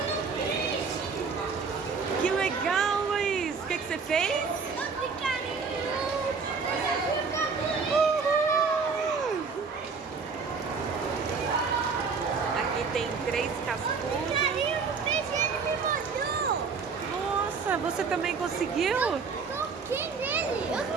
Que legal, Luiz! O que você fez? Uhul! Aqui tem 3 cascudos. Nossa, você também conseguiu? Eu toquei nele. Eu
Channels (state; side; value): quieter; left; 5.1 dB